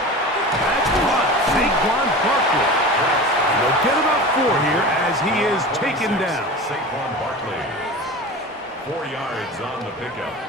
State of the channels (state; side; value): normal; both; correlation 0.33